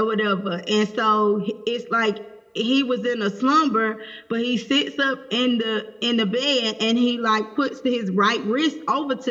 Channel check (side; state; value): both; identical; correlation 1.00